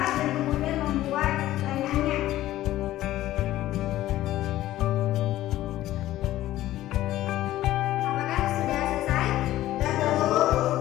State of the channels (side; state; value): right; quieter; 14.7 dB